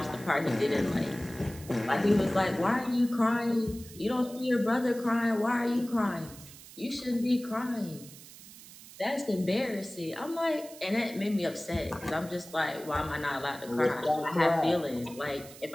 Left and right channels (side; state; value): right; noise; hiss, 18 dB below the sound